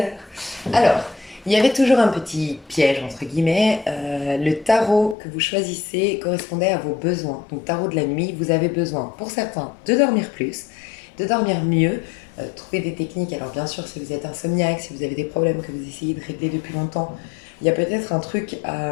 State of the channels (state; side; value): drops out; right; at 5.2 s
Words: Alors, il y avait toujours un petit piège, entre guillemets. Le tarot que vous choisissez correspondait à vos besoins. Donc, tarot de la nuit, vous avez besoin, pour certains, de dormir plus, de dormir mieux, trouver des techniques. Alors, bien sûr, si vous êtes insomniaque, si vous avez des problèmes que vous essayez de régler depuis longtemps, il y a peut-être un truc